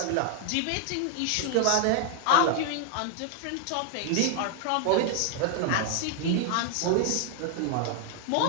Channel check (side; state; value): both; different; correlation 0.00